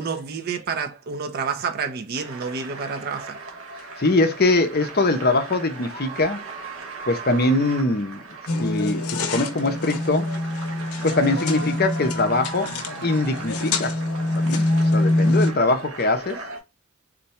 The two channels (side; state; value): both; normal; correlation 0.32